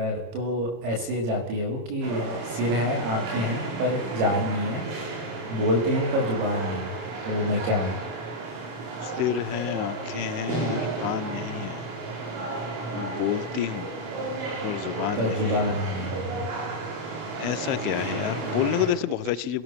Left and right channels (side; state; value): left; late; 26 ms